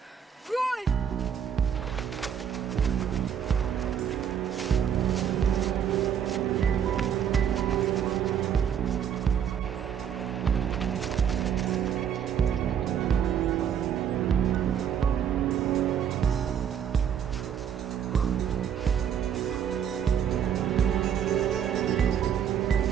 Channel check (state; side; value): quieter; left; 8.5 dB